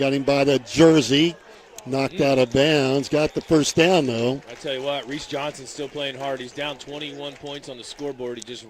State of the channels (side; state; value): both; identical; correlation 1.00